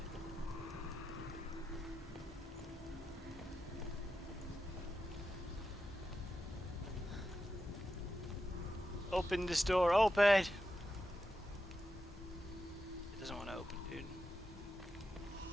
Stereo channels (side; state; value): both; normal; correlation 0.89